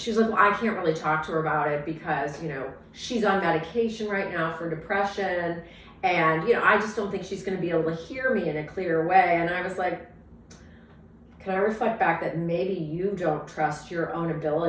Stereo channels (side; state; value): both; identical; correlation 1.00